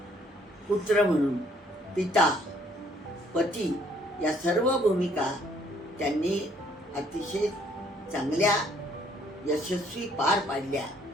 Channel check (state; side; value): normal; both; correlation 0.64